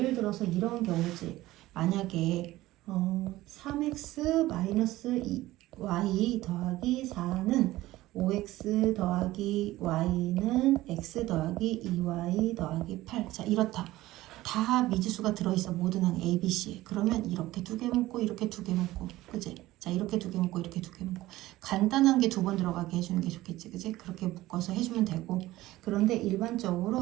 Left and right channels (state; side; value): quieter; left; 16.9 dB